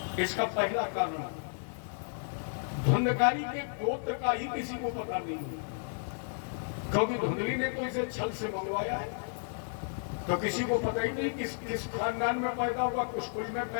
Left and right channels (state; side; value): silent; right; digital silence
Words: इसका पहला कारण, धुंधकारी के गोत्र का ही किसी को पता नहीं है, क्योंकि धुंधली ने तो इसे छल से मंगवाया है, तो किसी को पता ही नहीं किस खानदान में पैदा हुआ, किस कुल में